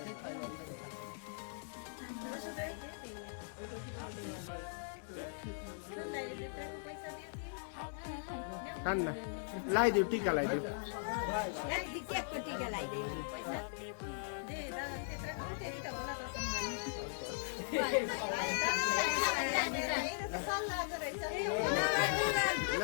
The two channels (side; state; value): right; silent; 52 dB below the other